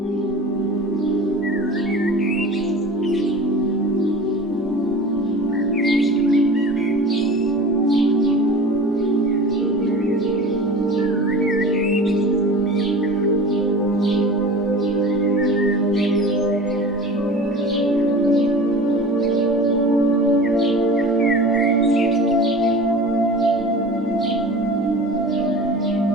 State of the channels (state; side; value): normal; both; correlation 0.37